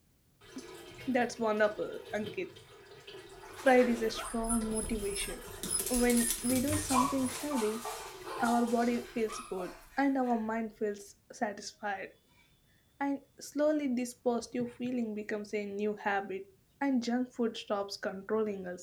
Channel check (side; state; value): both; identical; correlation 1.00